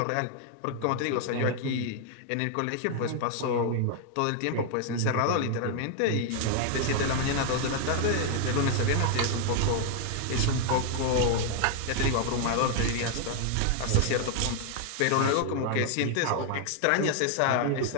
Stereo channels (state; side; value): different; both; correlation 0.00